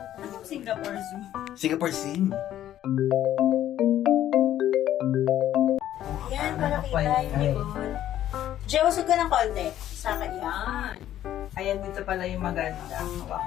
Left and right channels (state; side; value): quieter; right; 12.0 dB